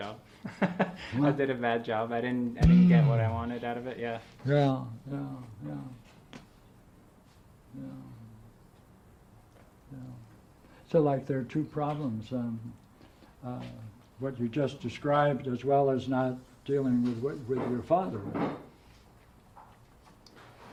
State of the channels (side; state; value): both; identical; correlation 1.00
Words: I did a bad job. I didn't get what I wanted out of it. Yeah. Yeah. So, like, there are two problems. What you just described, as well as not dealing with your father.